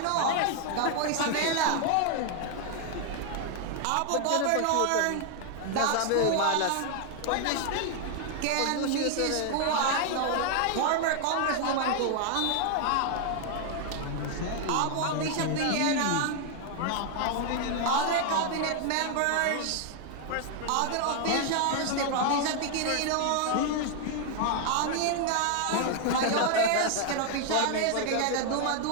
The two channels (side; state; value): both; different; correlation 0.00